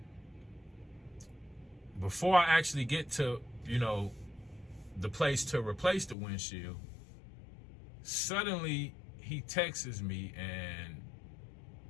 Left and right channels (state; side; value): drops out; right; at 6.2 s